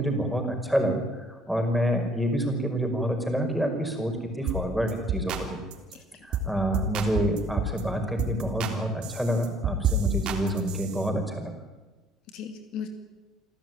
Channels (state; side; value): normal; both; correlation 0.61